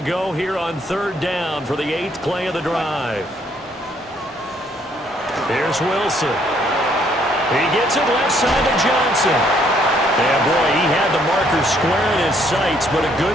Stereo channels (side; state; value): both; normal; correlation 0.67